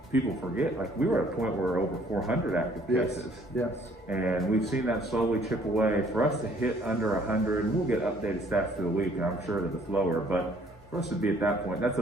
people forget, like we were at a point where we're over 400 active cases. Yes. And we've seen that slowly chip away. For us to hit under 100, we'll get updated stats through the week, and I'm sure that it's lower, but for us to be at that point, that's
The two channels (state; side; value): normal; both; correlation 0.60